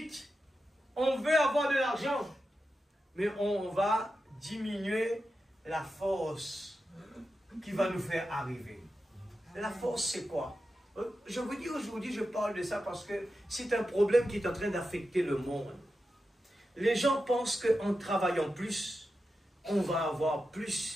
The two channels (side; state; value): both; normal; correlation 0.90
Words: on veut avoir de l'argent, mais on va diminuer la force qui va nous faire arriver. La force, c'est quoi? Je vous dis aujourd'hui, je parle de ça parce que c'est un problème qui est en train d'affecter le monde. Les gens pensent qu'en travaillant plus, on va avoir